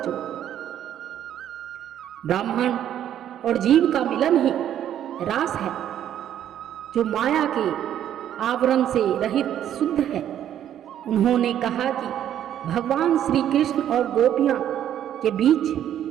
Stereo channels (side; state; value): left; quieter; 10.7 dB